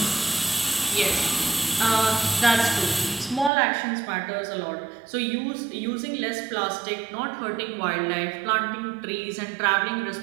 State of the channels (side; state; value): left; drops out; at 3.5 s